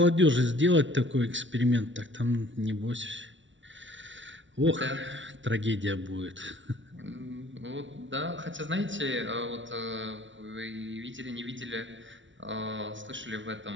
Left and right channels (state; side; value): late; left; 0.55 ms